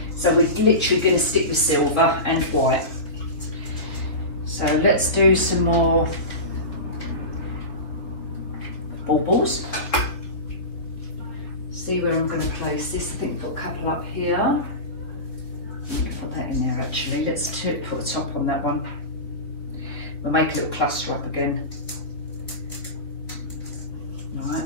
So we're literally going to stick with silver and white. So let's do some more baubles. See where I'm going to place this. I think we've got a couple up here. I'm going to put that in there actually. Let's put a top on that one. We'll make a little cluster up again. Right,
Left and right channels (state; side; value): late; right; 3.8 ms